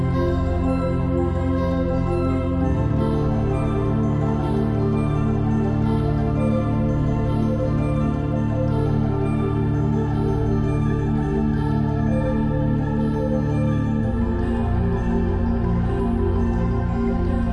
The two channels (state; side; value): identical; both; correlation 1.00